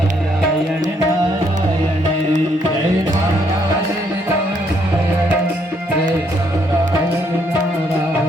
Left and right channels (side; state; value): both; normal; correlation 0.71